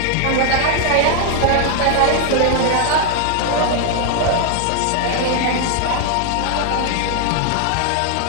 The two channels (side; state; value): both; different; correlation 0.00